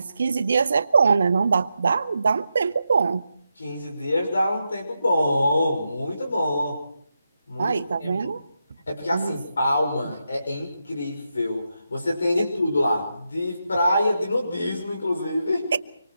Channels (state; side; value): inverted; both; correlation -0.87